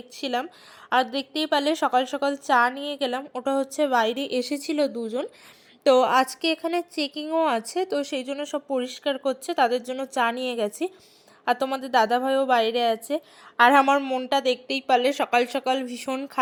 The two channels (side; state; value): both; identical; correlation 1.00